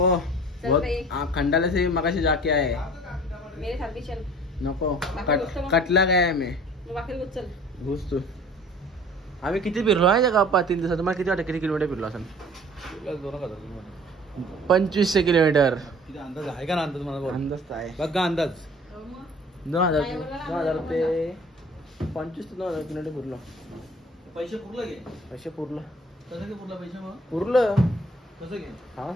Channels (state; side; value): normal; both; correlation 0.49